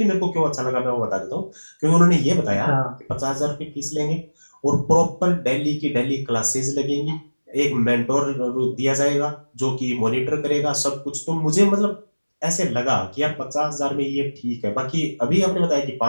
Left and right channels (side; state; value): both; inverted; correlation -1.00